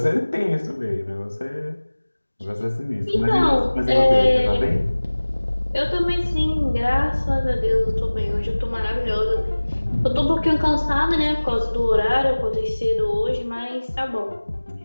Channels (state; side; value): inverted; both; correlation -1.00